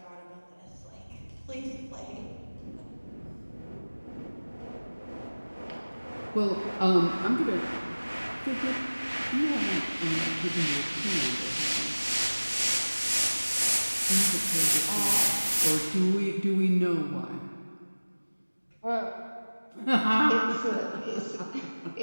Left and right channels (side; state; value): both; inverted; correlation -1.00